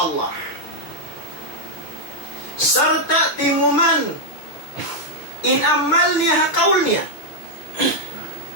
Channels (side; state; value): right; late; 6.8 ms